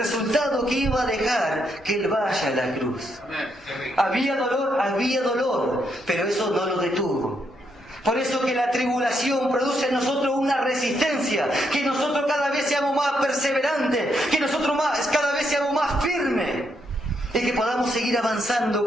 que iba a dejar que Él vaya a la cruz. Había dolor, pero eso no lo detuvo. Por eso que la tribulación produce en nosotros una resistencia, que nosotros cada vez seamos más perseverantes, que nosotros cada vez seamos más firmes y que podamos seguir avanzando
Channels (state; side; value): normal; both; correlation 0.77